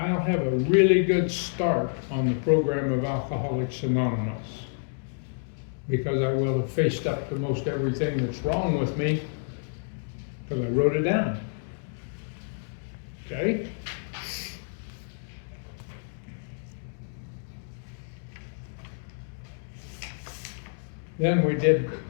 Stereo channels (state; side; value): silent; right; digital silence